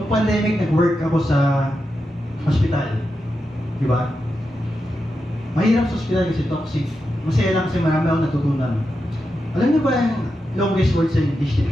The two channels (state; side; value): normal; both; correlation 0.88